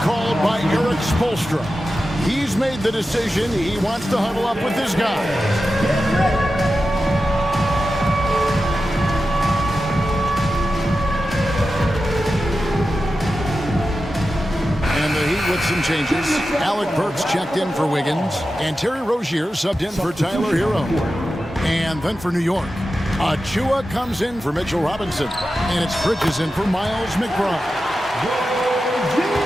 by Eric Spoelstra. He's made the decision. He wants to huddle up with this guy. And the Heat with some changes. Alec Burks checked in for Wiggins. And Terry Rozier subbed in for Tyler Hero. And then for New York, Achiuwa comes in for Mitchell Robinson. And it's Bridges in for Miles McBride.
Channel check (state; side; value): normal; both; correlation 0.92